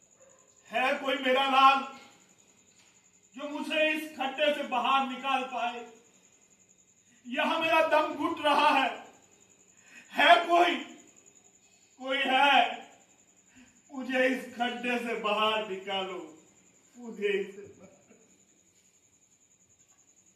है कोई मेरा लाल जो मुझे इस खड्डे से बाहर निकाल पाए? यहां मेरा दम घुट रहा है। है कोई? कोई है? मुझे इस खड्डे से बाहर निकालो, मुझे इसे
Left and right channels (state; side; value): identical; both; correlation 1.00